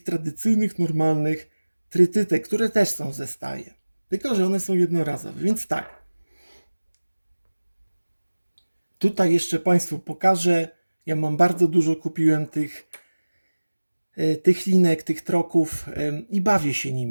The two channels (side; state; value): both; inverted; correlation -1.00